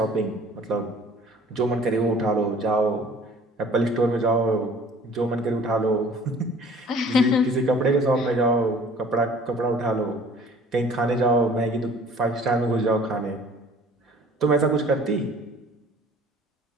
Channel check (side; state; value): both; normal; correlation 0.51